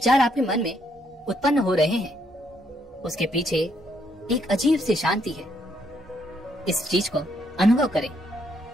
आपके मन में उत्पन्न हो रहे हैं, उसके पीछे एक अजीब सी शांति है। इस चीज को अनुभव करें,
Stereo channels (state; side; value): normal; both; correlation 0.73